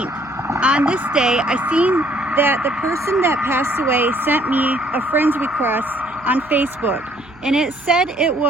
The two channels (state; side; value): noise; right; hum, 27 dB below the sound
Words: on this day, I seen that the person that passed away sent me a friend's request on Facebook, and it said it